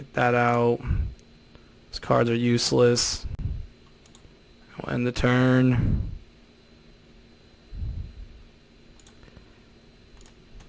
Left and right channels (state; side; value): identical; both; correlation 1.00